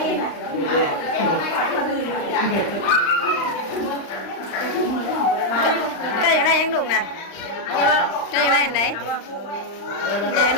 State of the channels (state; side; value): late; right; 35 ms